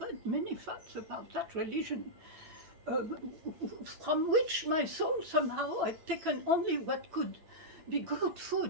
many facts about that religion, from which my soul somehow had taken only what could be good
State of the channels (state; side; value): late; left; 9.1 ms